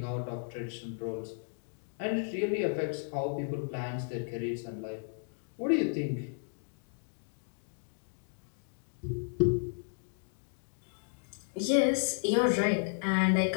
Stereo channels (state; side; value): silent; right; digital silence